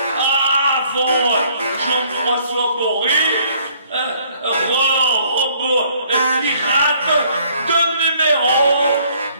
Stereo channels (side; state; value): both; inverted; correlation -0.62